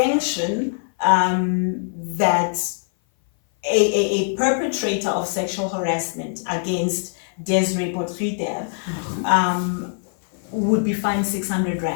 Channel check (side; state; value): right; silent; 58 dB below the other